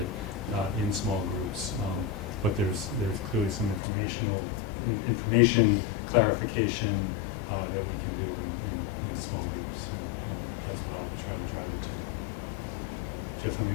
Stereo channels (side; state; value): right; drops out; at 3.8 s